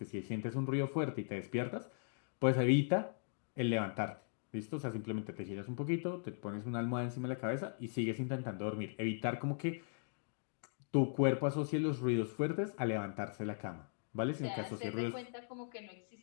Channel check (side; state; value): right; silent; digital silence